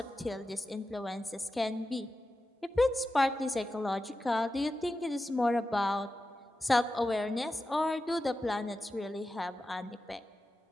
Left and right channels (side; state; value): both; normal; correlation 0.92